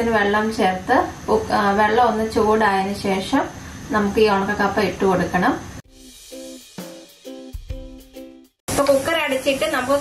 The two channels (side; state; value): both; identical; correlation 1.00